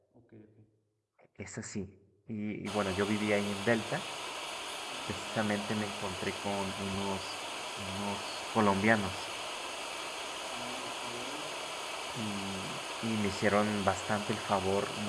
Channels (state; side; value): identical; both; correlation 1.00